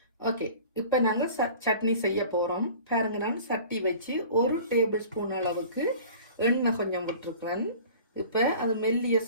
ஓகே, இப்போ நாங்கள் சட்னி செய்ய போகிறோம். பாருங்க, நான் சட்டி வச்சு 1 டேபிள் ஸ்பூன் அளவுக்கு எண்ணெய் கொஞ்சம் விட்டுருக்குறேன். இப்போ அது மெல்லிய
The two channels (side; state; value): both; inverted; correlation -0.44